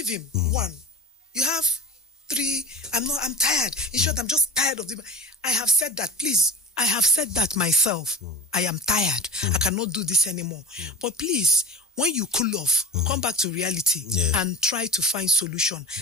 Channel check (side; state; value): both; normal; correlation 0.30